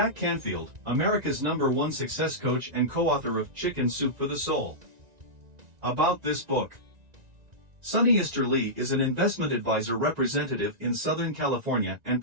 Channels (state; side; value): late; left; 1.9 ms